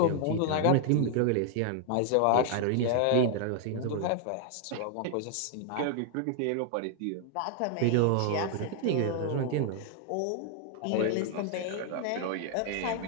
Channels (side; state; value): both; different; correlation 0.00